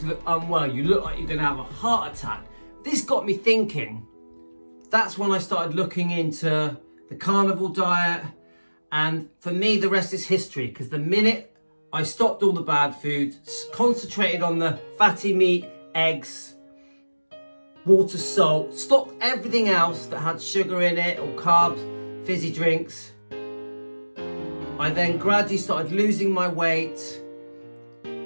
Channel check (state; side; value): inverted; both; correlation -1.00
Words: look unwell. You look like you're going to have a heart attack. This got me thinking. That's when I started looking into the carnivore diet. And for me, the rest is history. Because the minute I stopped all the bad food, concentrated on the fatty meat, eggs, water, salt, stopped everything else that had sugar in it or carbs, fizzy drinks. I then gradually started losing my weight.